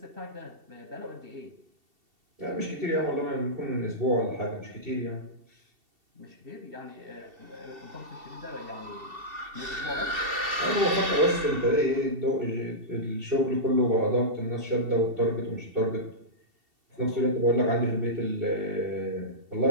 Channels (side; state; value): left; late; 2.7 ms